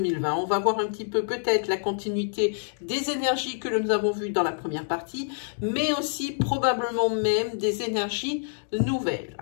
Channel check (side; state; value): right; silent; digital silence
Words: On va voir un petit peu peut-être la continuité des énergies que nous avons vues dans la première partie, mais aussi probablement même des énergies nouvelles.